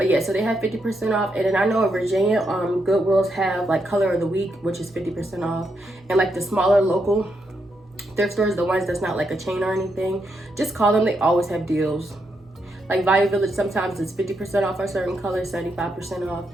yeah, so they have 50% off. And then I know in Virginia, Goodwills have like color of the week, which is 50% off. And like the smaller local thrift stores, the ones that's not like a chain or anything, just call them. They always have deals. Like Value Village, sometimes it's 50% off a certain color, 75% off.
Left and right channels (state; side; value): normal; both; correlation 0.81